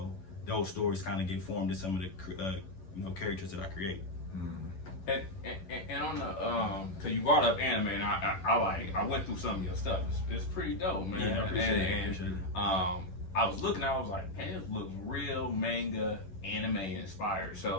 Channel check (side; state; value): right; late; 11 ms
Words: those stories kind of get formed in some of the characters that I create. And on the, cause you brought up anime, and I went through some of your stuff. It's pretty dope, man. Yeah, I appreciate it. I was looking, I was like, hey, this looks real manga, anime inspired.